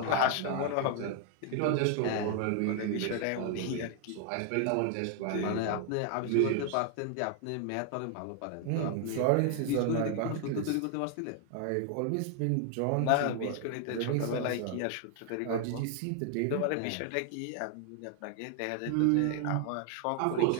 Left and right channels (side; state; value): both; different; correlation 0.00